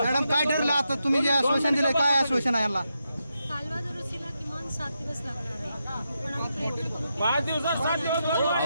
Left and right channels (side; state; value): both; inverted; correlation -0.85